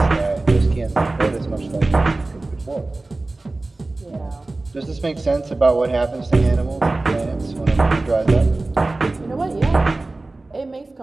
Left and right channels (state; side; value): quieter; left; 3.1 dB